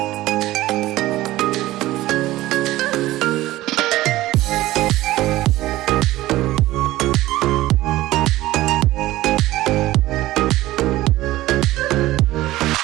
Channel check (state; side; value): quieter; left; 16.6 dB